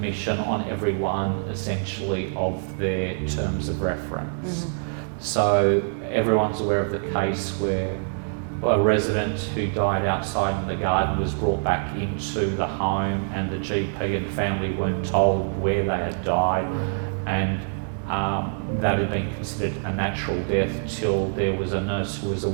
on every one, essentially, of their terms of reference. So everyone's aware of the case where a resident who died outside in the garden was brought back into the home, and the GP and family weren't told where they had died, and that had been considered a natural death till there was a nurse who was a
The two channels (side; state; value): left; silent; digital silence